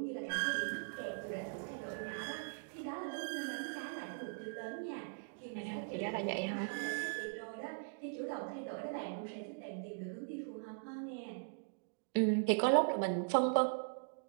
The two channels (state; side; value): silent; left; digital silence